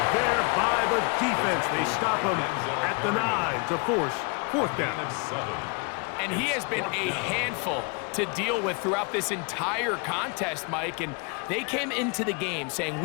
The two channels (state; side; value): quieter; right; 32.6 dB